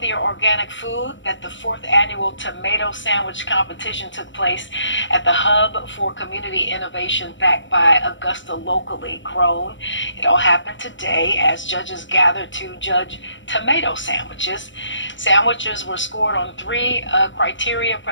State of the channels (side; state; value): right; late; 0.55 ms